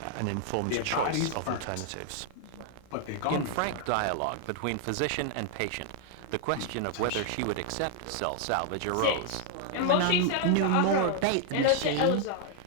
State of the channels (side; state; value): both; different; correlation 0.00